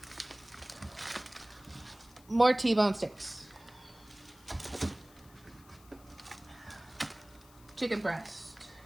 More T-bone steaks. Chicken breast.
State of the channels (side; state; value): left; noise; hiss, 25 dB below the sound